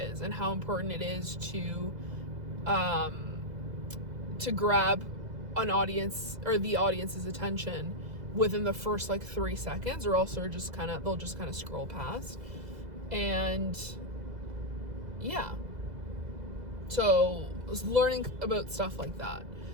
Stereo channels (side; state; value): left; late; 2.0 ms